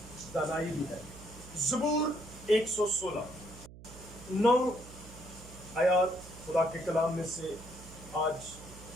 دانائی بھی ہے۔ زبور 116 9 آیات خدا کے کلام میں سے آج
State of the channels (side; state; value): right; noise; hum, 17 dB below the sound